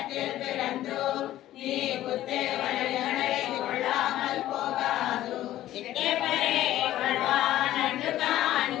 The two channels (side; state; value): right; quieter; 13.8 dB